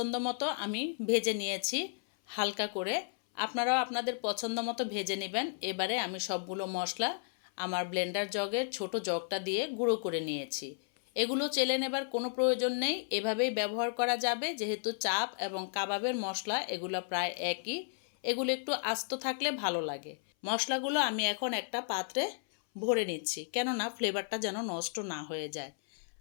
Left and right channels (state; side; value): silent; right; 55 dB below the other